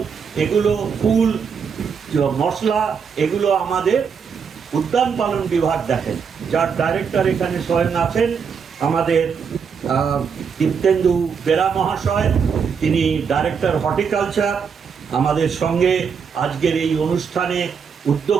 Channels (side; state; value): left; quieter; 6.4 dB